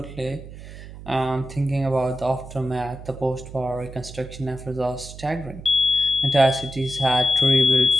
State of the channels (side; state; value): right; noise; hum, 14 dB below the sound